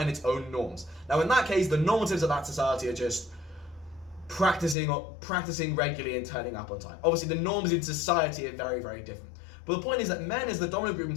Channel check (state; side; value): drops out; right; at 4.8 s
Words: its own norms. Now in that case, the normatives of that society are just practicing regularly and turning up on time. Obviously the norms in society are very, very different. But the point is that men, as the dominant group in